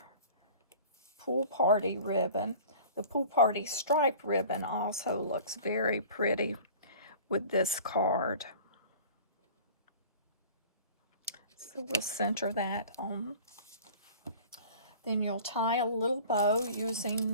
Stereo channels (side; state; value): both; inverted; correlation -0.43